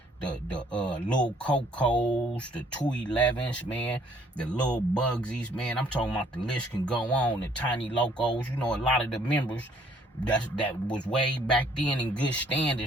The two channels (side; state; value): both; normal; correlation 0.62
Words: the little Cocos, the 211s, man, the little Bugsies, man. I'm talking about the list can go on, the Tiny Locos. You know, a lot of the members that was way back then in good